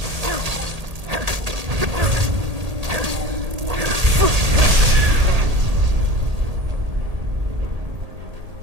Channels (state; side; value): late; left; 1.8 ms